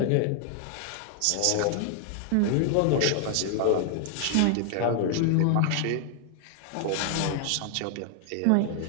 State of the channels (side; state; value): both; different; correlation 0.00